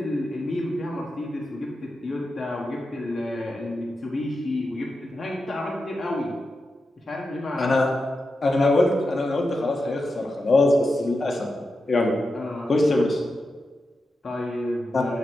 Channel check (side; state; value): both; normal; correlation 0.89